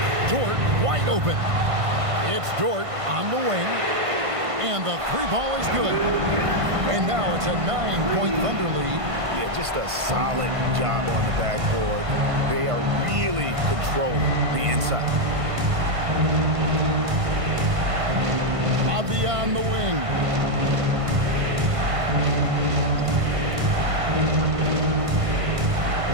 Dort wide open. It's Dort on the wing. And the 3-ball is good. And now it's a 9-point Thunder lead. Yeah, just a solid job on the backboard. They are really controlling the inside. Avdia on the wing.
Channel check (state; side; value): late; left; 1.5 ms